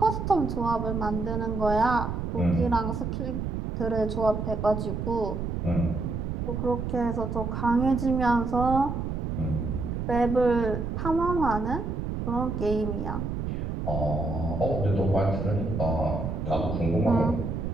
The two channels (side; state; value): right; noise; rumble, 3 dB below the sound